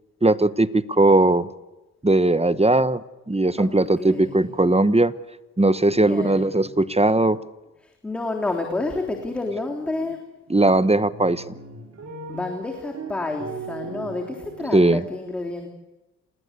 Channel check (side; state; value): both; normal; correlation 0.66